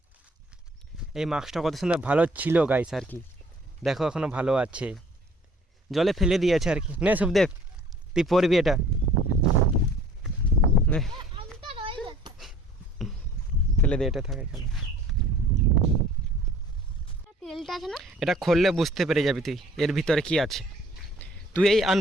এই মাস্কটা কত সুন্দর ভালো ছিল গাইস আর কি, দেখো এখনো ভালো আছে, জলে ফেলে দিয়েছে আর কি। নে সুখদেব তুই পরবি এটা, নে আমটা রয়ে গেছে। ফেলে দে, এটা থাকে এখানে। তেলটা আছে না? এটা খুললে বুঝতে পেরে যাবি তুই এর ভিতরে কি আছে। তুই এই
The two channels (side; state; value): both; normal; correlation 0.53